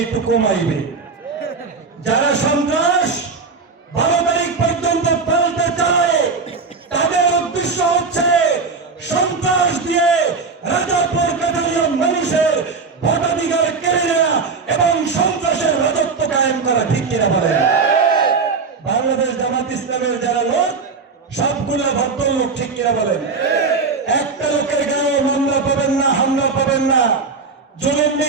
একটু কমাইবে। যারা সন্ত্রাস 12 তারিখ পর্যন্ত পালতে চায় তাদের উদ্দেশ্য হচ্ছে সন্ত্রাস দিয়ে রাজাপুর কাঠালিয়া মানুষের ভোটাধিকার কেড়ে নেওয়া এবং সন্ত্রাসের রাজত্ব কায়েম করা, ঠিক কিনা বলেন? বাংলাদেশ জামাত ইসলামের যারা লোক সবগুলো ভদ্রলোক, ঠিক কিনা বলেন? একটা লোকের গায়েও মামলা পাবেন না, হামলা পাবেন না, জুলুম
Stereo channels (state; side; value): quieter; left; 4.6 dB